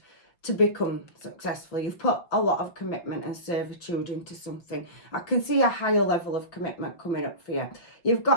to become successful. You've put a lot of commitment and servitude into something. I can see a higher level of commitment coming up for you. You've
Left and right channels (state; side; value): late; right; 5.6 ms